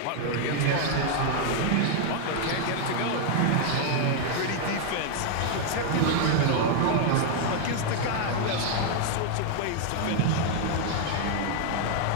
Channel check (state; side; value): different; both; correlation 0.00